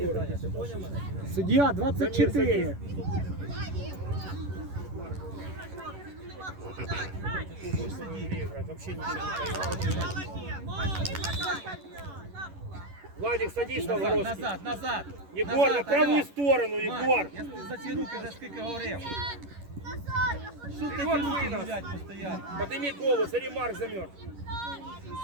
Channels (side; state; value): left; late; 11 ms